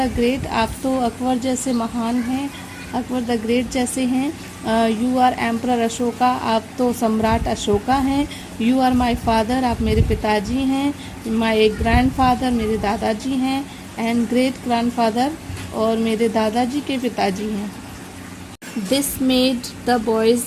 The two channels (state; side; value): identical; both; correlation 1.00